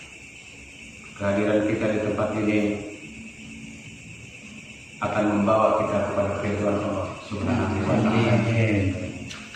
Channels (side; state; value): both; identical; correlation 1.00